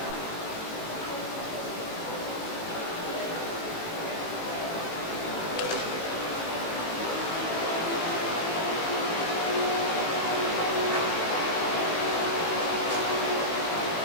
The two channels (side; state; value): right; late; 18 ms